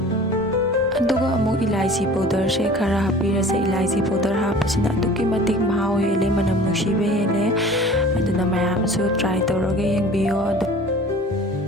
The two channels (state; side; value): normal; both; correlation 0.44